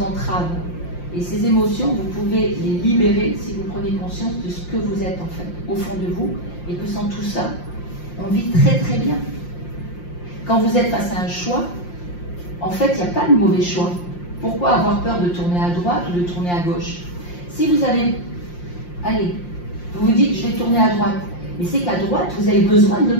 entravent. Et ces émotions, vous pouvez les libérer si vous prenez conscience de ce que vous êtes, en fait, au fond de vous, et que sans tout ça, on vit très très bien. Quand vous êtes face à un choix, en fait, il n'y a pas de mauvais choix. Pourquoi avoir peur de tourner à droite ou de tourner à gauche? Si vous avez, allez, vous vous dites, je vais tourner à droite, mais c'est qu'à droite, vous avez besoin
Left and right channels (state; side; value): late; right; 5.7 ms